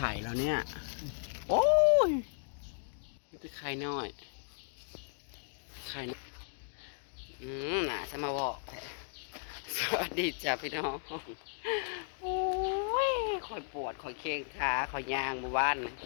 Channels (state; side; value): silent; right; digital silence